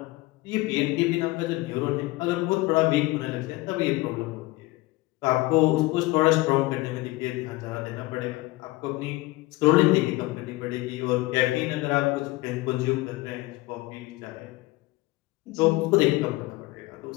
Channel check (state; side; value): quieter; right; 20.1 dB